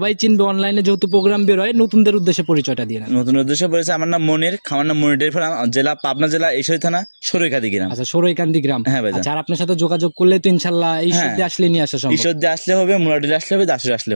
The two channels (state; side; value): inverted; both; correlation -1.00